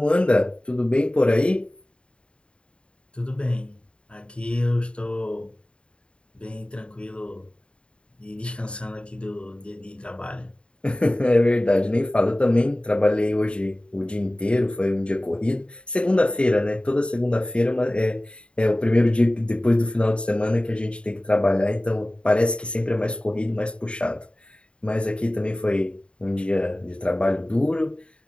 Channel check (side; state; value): right; late; 0.056 ms